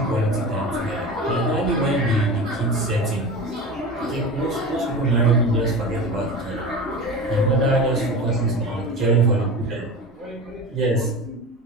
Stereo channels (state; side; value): normal; both; correlation 0.30